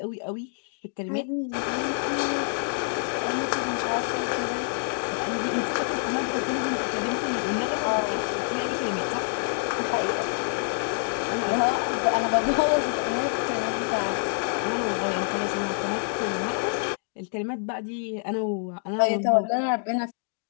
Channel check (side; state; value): right; silent; digital silence